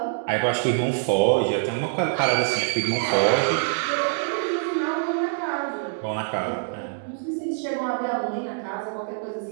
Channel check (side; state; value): left; silent; digital silence